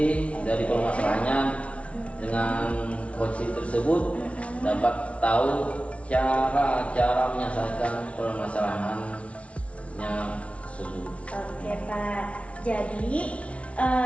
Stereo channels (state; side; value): late; right; 0.063 ms